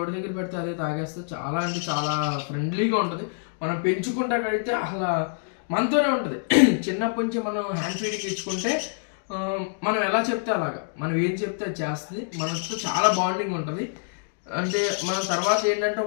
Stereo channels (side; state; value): right; silent; digital silence